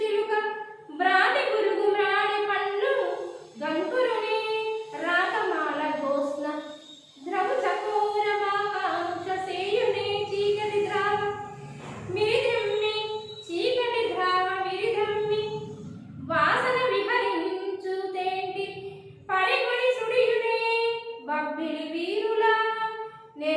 చిలుక బ్రాతి గురుగు మ్రాణి పండ్లు గంకురుని రాకమాల గోస్న ద్రవు చకోర మాకాంక్ష సేయునే చీకటి ద్రావ మిరిద్రమ్మి చీకటి ద్రావ మిరిద్రమ్మి వాసన విహరించు తేంటి పరిగుడి సుడియునే బబ్బిలి వీరుల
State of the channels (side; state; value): both; identical; correlation 1.00